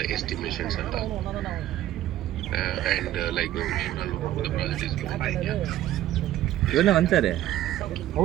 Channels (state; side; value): quieter; left; 13.3 dB